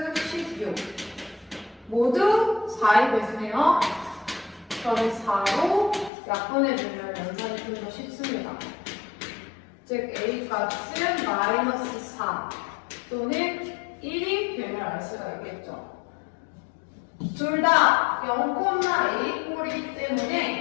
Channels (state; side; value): drops out; right; at 6.1 s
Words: 16 모두 4의 배수네요. 그럼 4로 약분해주면 연산이 좀 더 쉽습니다. 즉 A 값은 마이너스 4 또는 1이 됨을 알 수가 있겠죠. 둘 다 0,A 꼴이기